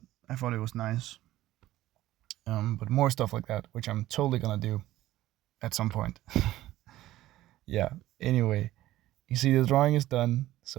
I thought it was nice. But more stuff like that, which I'm totally gonna do at some point. Yeah. Anyway, you see the drawing is done.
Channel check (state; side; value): quieter; left; 15.2 dB